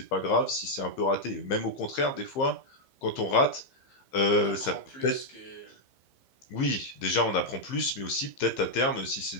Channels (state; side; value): late; right; 15 ms